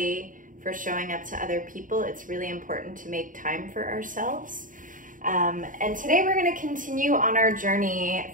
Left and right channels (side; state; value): left; late; 0.39 ms